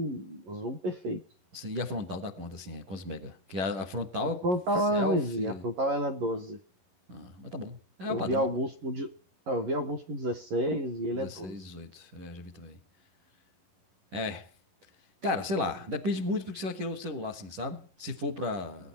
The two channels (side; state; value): left; late; 11 ms